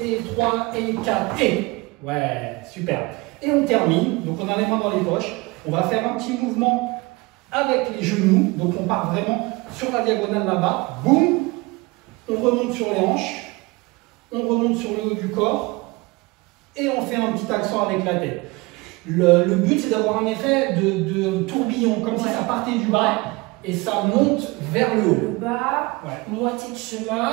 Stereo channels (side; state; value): left; quieter; 24.2 dB